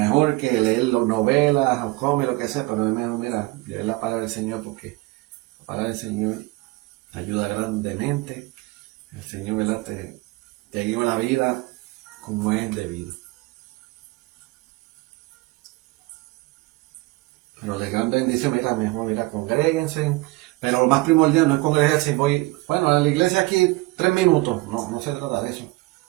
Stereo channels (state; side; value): quieter; left; 21.9 dB